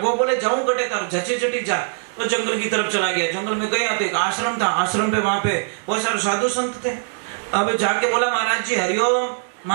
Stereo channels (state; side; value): silent; left; digital silence